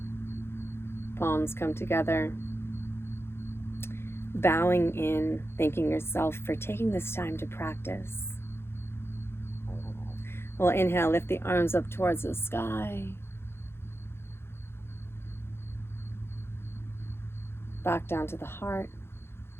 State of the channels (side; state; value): right; late; 0.12 ms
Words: Palms come together. Bowing in, thanking yourself for taking this time to practice. We'll inhale, lift the arms up towards the sky. Back down to the heart